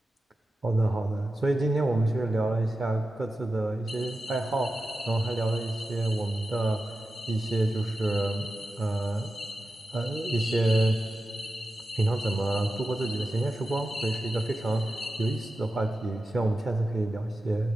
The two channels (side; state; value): both; normal; correlation 0.92